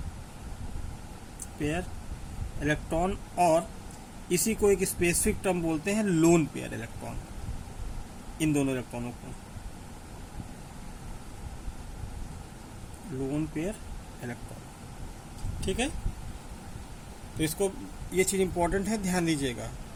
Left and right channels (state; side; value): identical; both; correlation 1.00